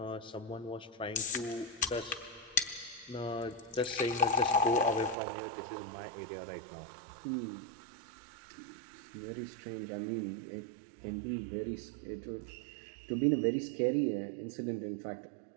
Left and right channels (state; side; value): drops out; left; at 5.2 s